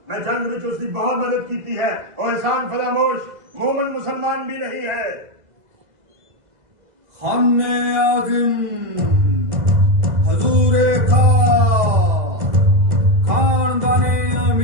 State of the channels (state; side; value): late; left; 2.0 ms